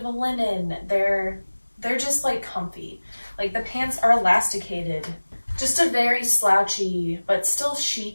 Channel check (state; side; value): inverted; both; correlation -1.00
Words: a linen, they're just like comfy. Like the pants are elasticated. Just a very slouchy, but still